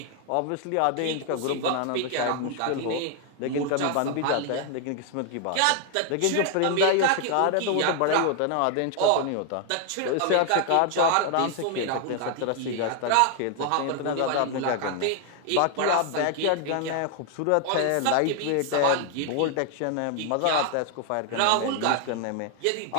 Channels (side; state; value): both; different; correlation 0.00